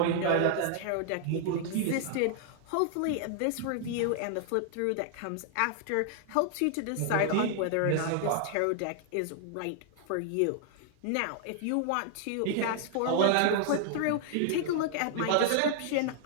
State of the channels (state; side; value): different; both; correlation 0.00